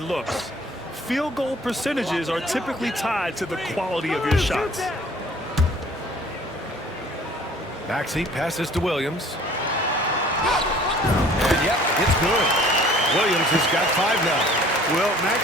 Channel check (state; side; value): normal; both; correlation 0.52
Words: Field goal percentages are typically tied to the quality of your shots. Maxey passes to Williams. And yep, it's good. Williams has got 5 now. Well,